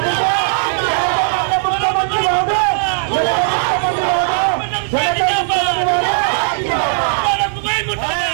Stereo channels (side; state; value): left; silent; digital silence